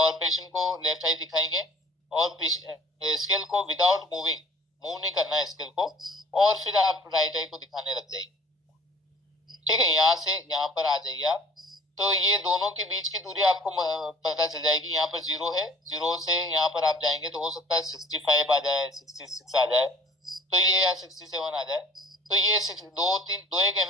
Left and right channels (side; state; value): both; normal; correlation 0.49